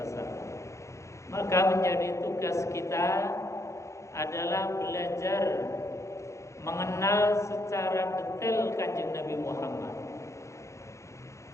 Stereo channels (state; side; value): late; right; 0.14 ms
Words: Maka menjadi tugas kita adalah belajar mengenal secara detail Kanjeng Nabi Muhammad.